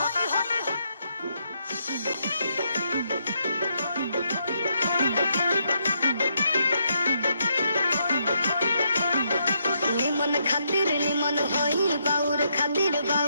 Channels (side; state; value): both; inverted; correlation -0.76